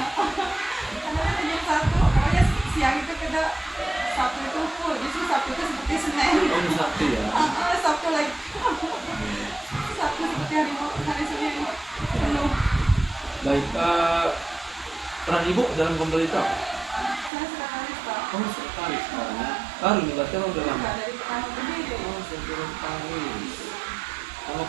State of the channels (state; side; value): drops out; left; at 17.3 s